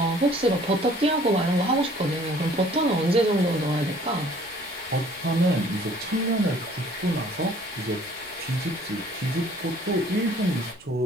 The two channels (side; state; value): left; noise; rumble, 29 dB below the sound